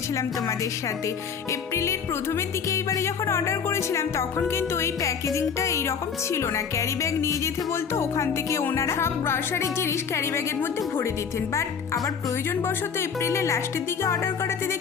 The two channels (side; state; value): right; quieter; 6.6 dB